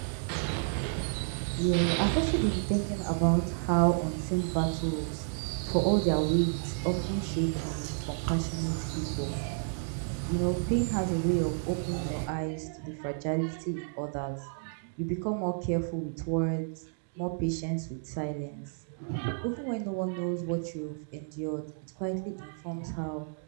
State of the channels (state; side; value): silent; left; digital silence